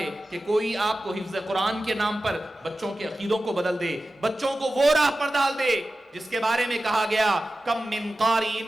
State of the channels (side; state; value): both; normal; correlation 0.94